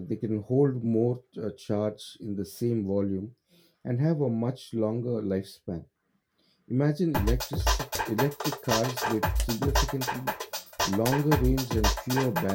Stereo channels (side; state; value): both; identical; correlation 1.00